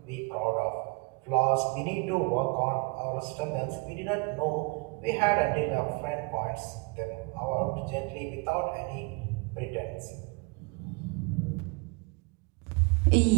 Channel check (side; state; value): left; quieter; 29.6 dB